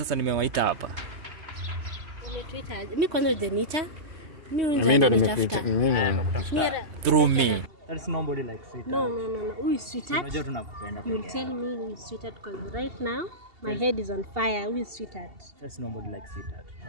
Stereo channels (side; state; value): left; late; 2.8 ms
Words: nimewaita hapa. Umetuita? Mimi kwanza hujaniita. Mimi ndo nimekuita. Through me. There's nobody like sweetheart. No. Who is sweetheart? Unajua tunakupenda. You will tell me who is sweetheart because right now my head is on fire. Who is sweetheart? There's nobody like sweetheart.